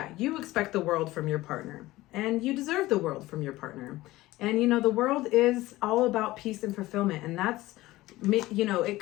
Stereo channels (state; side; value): quieter; right; 17.9 dB